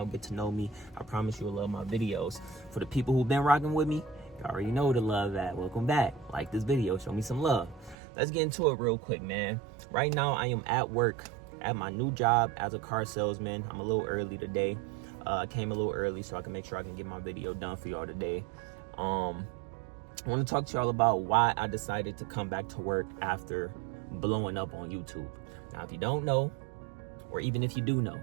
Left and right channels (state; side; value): drops out; left; at 8.0 s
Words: get to know me. I promise you'll love my videos. For the people who've been rocking with me, you already know the love that. Welcome back. Like this video, show me some love. Let's get into it real quick, man. Right now I am at work at my new job as a car salesman. I'm a little early today. I came a little early so I can make sure I can get my video done for y'all today. I want to talk to y'all about why I decided to come back to work after blowing up on YouTube. Now, if you don't know, or even if you do know,